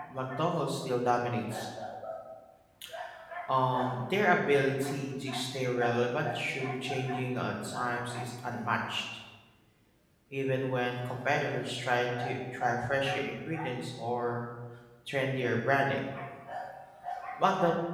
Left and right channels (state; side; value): identical; both; correlation 1.00